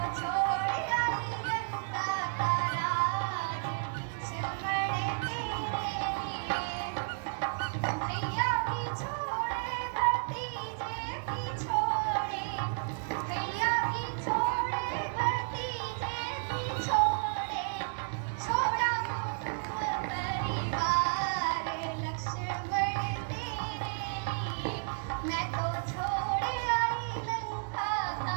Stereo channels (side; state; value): left; silent; digital silence